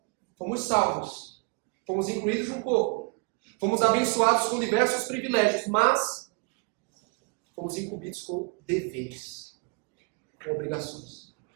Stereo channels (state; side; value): quieter; left; 32.7 dB